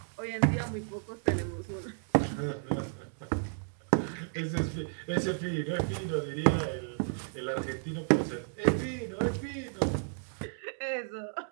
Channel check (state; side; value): silent; left; digital silence